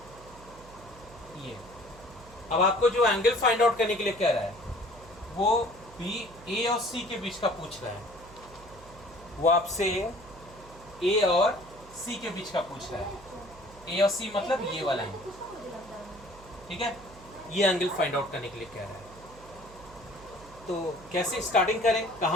ये अब आपको जो एंगल फाइंड आउट करने के लिए कह रहा है वो बी ए और सी के बीच का पूछ रहा है, वो आपसे ए और सी के बीच का पूछ रहा है। ए और सी मतलब ये वाला एंगल, ठीक है, ये एंगल फाइंड आउट करने के लिए कह रहा है। तो कैसे स्टार्टिंग करें,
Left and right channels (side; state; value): right; noise; hum, 20 dB below the sound